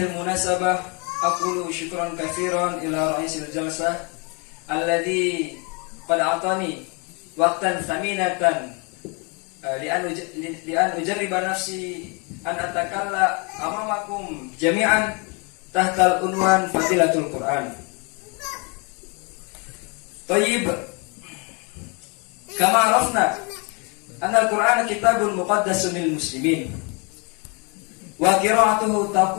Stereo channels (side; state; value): right; quieter; 32.5 dB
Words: al-munasabah aqulu syukran katsiran ila ra'isil jalsah alladhi qad atani waqtan thaminatan li an ujarriba nafsi an atakalla amamakum jami'an tahta al-unwan fadilatul Qur'an. Tayyib, kama arafna anna al-Qur'an kitabun muqaddasun lil muslimin wa qira'atuhu